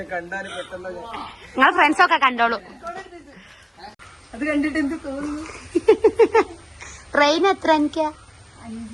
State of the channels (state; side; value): identical; both; correlation 1.00